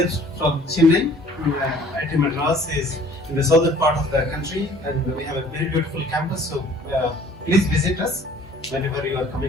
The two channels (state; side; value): normal; both; correlation 0.53